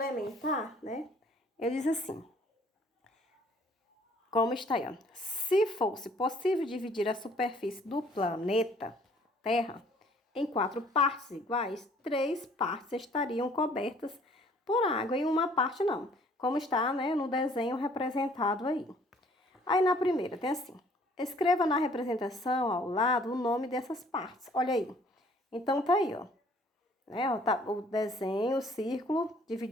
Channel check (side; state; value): both; normal; correlation 0.58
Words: né, eu disse assim, como está aí, ó. Se fosse possível dividir a superfície do planeta Terra em 4 partes iguais, 3 partes estariam cobertas por água e uma parte não, como está, né, no desenho representado aí. Aí na primeira tem assim: escreva na representação ao lado o nome dessas partes. Olha aí. Então tá aí, ó. Né, ó, tá o desenho, o círculo